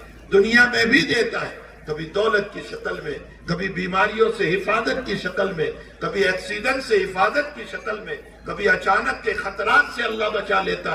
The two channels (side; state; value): both; identical; correlation 1.00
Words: دنیا میں بھی دیتا ہے. کبھی دولت کی شکل میں, کبھی بیماریوں سے حفاظت کی شکل میں, کبھی ایکسیڈنٹ سے حفاظت کی شکل میں, کبھی اچانک کے خطرات سے اللہ بچا